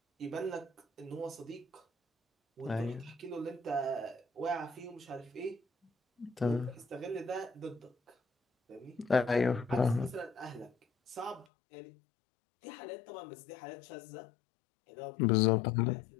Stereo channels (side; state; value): right; drops out; at 11.5 s